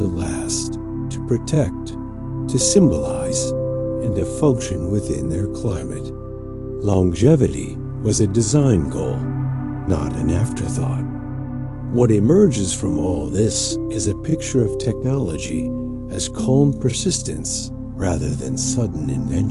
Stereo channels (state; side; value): identical; both; correlation 1.00